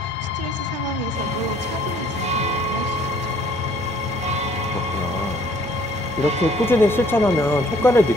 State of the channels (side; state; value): both; normal; correlation 0.59